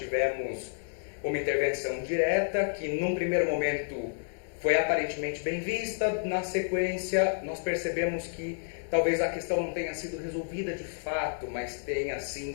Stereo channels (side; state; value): right; silent; 58 dB below the other